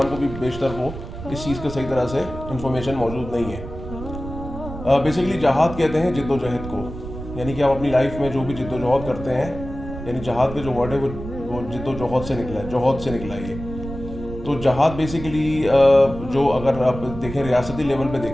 کو بھی بیشتر کو اس چیز کا صحیح طرح سے انفارمیشن موجود نہیں ہے۔ بیسیکلی جہاد کہتے ہیں جد و جہد کو، یعنی کہ آپ اپنی لائف میں جو بھی جد و جہد کرتے ہیں، یعنی جہاد کا جو ورڈ ہے وہ جد و جہد سے نکلا ہے، جوہد سے نکلا ہے یہ۔ تو جہاد بیسیکلی جو اگر آپ دیکھیں ریاستی لیول پہ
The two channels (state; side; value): noise; right; rumble, 11 dB below the sound